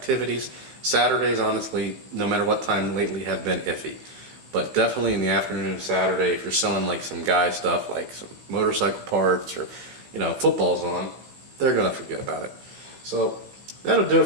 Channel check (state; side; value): late; left; 15 ms